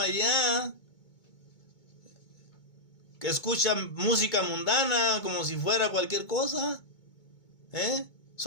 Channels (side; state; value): right; late; 2.2 ms